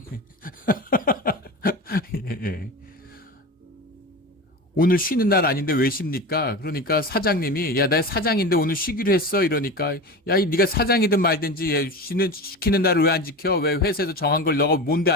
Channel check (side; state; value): both; normal; correlation 0.27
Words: 오늘 쉬는 날 아닌데 왜 쉽니까? 그러니까 사장님이 야, 나 사장인데 오늘 쉬기로 했어. 이러니까 야, 네가 사장이든 말든지 시키는 날을 왜 안 지켜? 왜 회사에서 정한 걸 너가 뭔데